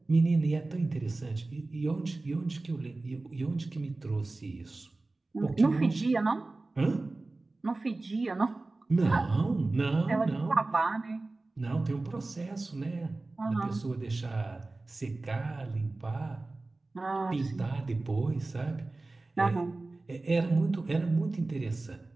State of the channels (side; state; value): left; quieter; 3.2 dB